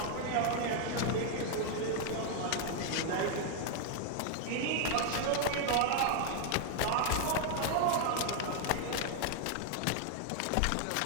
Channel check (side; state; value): both; different; correlation 0.00